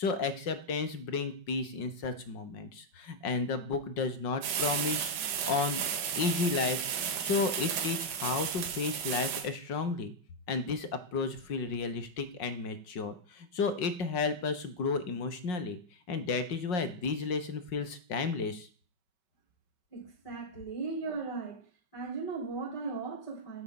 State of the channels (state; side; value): late; right; 5.3 ms